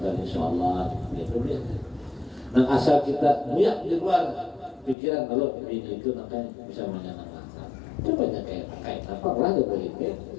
insyaallah gitu ya. Nah asal kita muyak di luar pikiran, lalu bini itu nanti bisa menyenangkan. Itu banyak kayak apa lah gitu ini.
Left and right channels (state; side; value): drops out; right; at 5.0 s